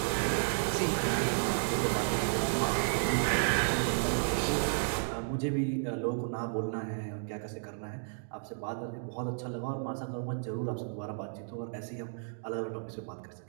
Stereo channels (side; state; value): left; silent; digital silence